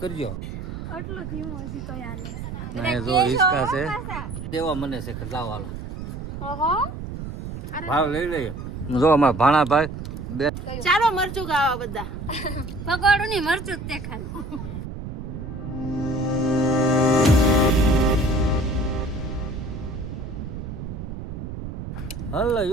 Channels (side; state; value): right; noise; rumble, 8 dB below the sound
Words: જો હિસકા છે દેવા મને છે કે લાવ હાલો ભાવ લઈ લઈએ જો અમારા ભાણાભાઈ બે ચાલો મરચું ખાવા બધા પકોડું ની મરચું તે ખાલી હલો